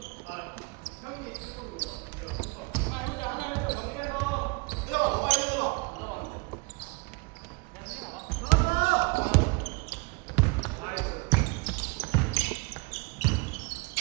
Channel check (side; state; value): left; quieter; 29.6 dB